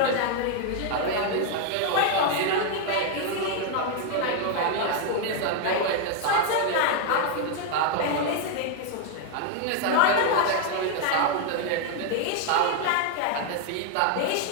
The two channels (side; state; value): both; different; correlation 0.00